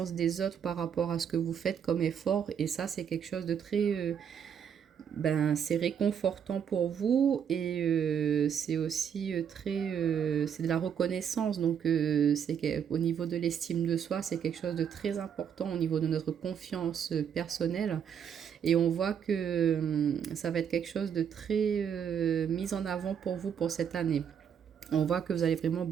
des autres par rapport à ce que vous faites comme effort et ça c'est quelque chose de très... c'est réconfortant pour vous et c'est aussi c'est de la reconnaissance donc au niveau de l'estime de soi c'est quelque chose de très important au niveau de notre confiance personnelle et on voit que ça va être quelque chose de très mis en avant pour vous pour cette année. On voit que vous allez vraiment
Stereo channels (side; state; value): left; quieter; 8.1 dB